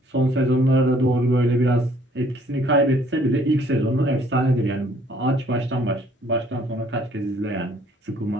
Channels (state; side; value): normal; both; correlation 0.61